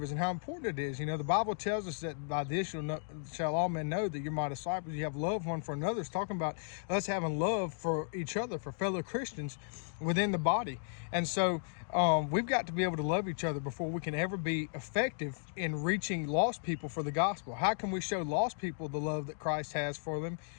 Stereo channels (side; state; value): right; silent; digital silence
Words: and how important it is. You know, the Bible tells us that by this shall all men know that you're my disciples. You have love one for another. It's talking about us having love for each other, for fellow Christians within the body. And so we've got to be able to love each other before we can ever be effective in reaching lost people for the gospel. How can we show lost people the love that Christ has for them